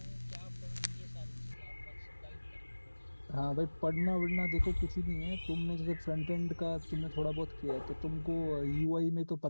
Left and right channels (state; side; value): inverted; both; correlation -1.00